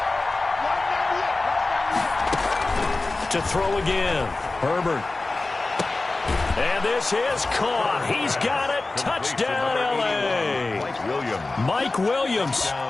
To throw again. Herbert. And this is caught. He's got it. Touchdown, L.A. Mike Williams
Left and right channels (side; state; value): right; quieter; 3.3 dB